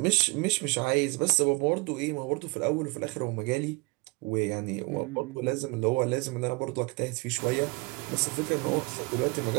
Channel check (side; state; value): left; quieter; 27.8 dB